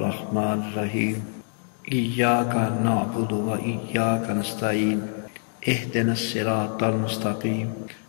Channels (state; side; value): silent; right; digital silence